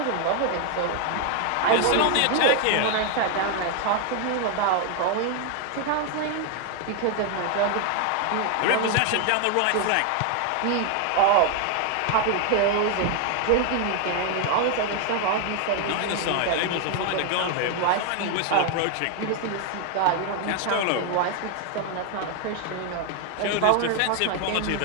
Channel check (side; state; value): both; different; correlation 0.00